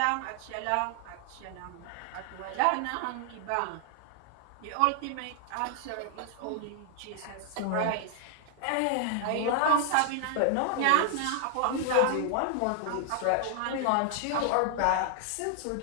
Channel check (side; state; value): both; different; correlation 0.00